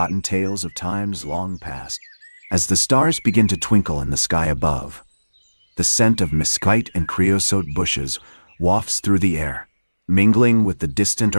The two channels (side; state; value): both; inverted; correlation -1.00